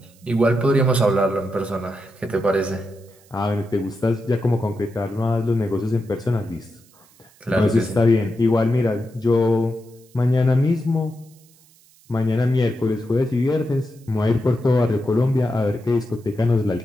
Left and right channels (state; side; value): noise; right; hiss, 29 dB below the sound